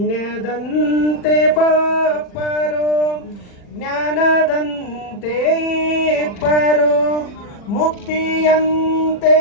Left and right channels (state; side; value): late; right; 40 ms